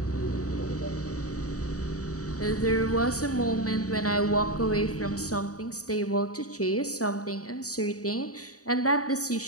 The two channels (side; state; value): right; late; 0.66 ms